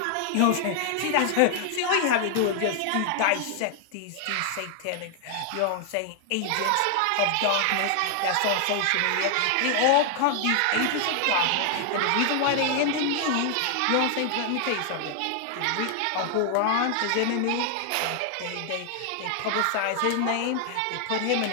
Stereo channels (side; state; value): both; different; correlation 0.00